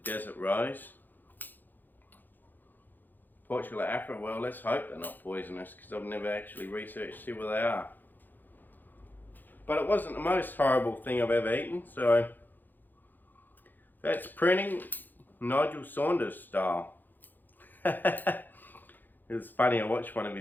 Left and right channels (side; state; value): right; late; 0.088 ms